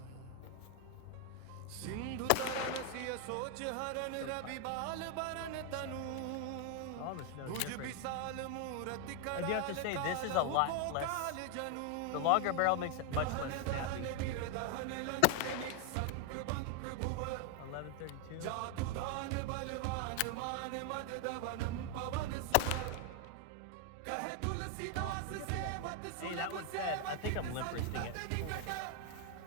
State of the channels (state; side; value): different; both; correlation 0.01